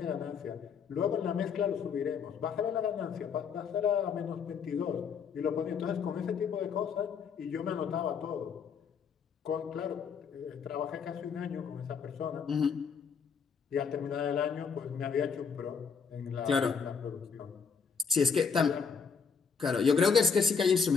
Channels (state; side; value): quieter; right; 6.0 dB